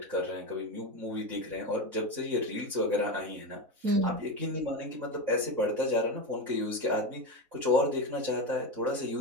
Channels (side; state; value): left; late; 4.0 ms